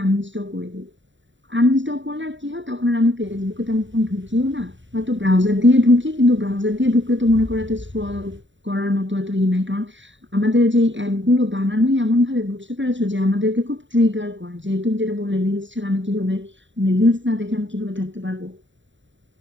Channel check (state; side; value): late; left; 0.54 ms